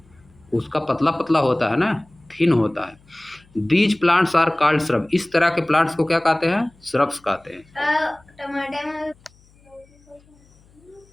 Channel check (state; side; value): noise; left; hum, 30 dB below the sound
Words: उसका पतला पतला होता है ना, थिन होता है। These plants are called shrub. इस तरह के प्लांट्स को क्या कहते हैं? श्रब्स कहते हैं। टमाटर में